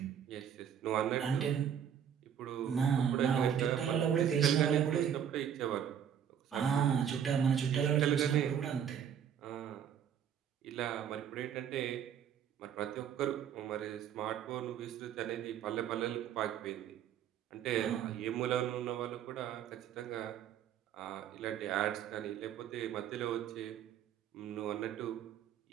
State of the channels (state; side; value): quieter; left; 8.8 dB